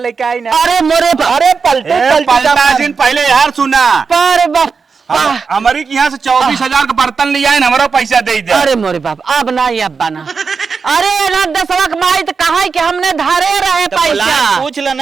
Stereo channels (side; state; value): left; quieter; 5.2 dB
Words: आए ना। अरे मोरे अरे पलटा दिन पहले यार सुना, पर बापा, हमारी यहाँ से 24,000 का बर्तन लिया है, हमारा पैसा दे दे। अरे मोरे बाप, अब ना ये अब बना। अरे ना 10 लाख माई तो कहा कि हमने धारे रहे पैसा। पूछ लो